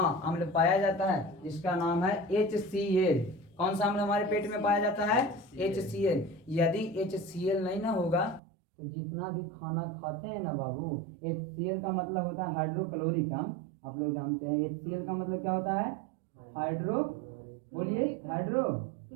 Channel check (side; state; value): left; drops out; at 8.4 s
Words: अम्ल पाया जाता है, जिसका नाम है HCl। कौन सा अम्ल हमारे पेट में पाया जाता है? HCl। यदि HCl नहीं ना होगा तो जितना भी खाना खाते हैं ना बाबू, HCl का मतलब होता है हाइड्रोक्लोरिक अम्ल। आप लोग जानते हैं HCl का मतलब क्या होता है? बोलिए,